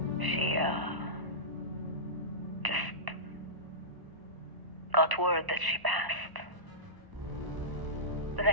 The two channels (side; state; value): left; late; 1.0 ms